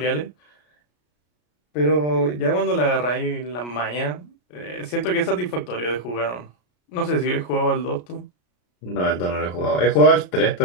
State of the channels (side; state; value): right; late; 33 ms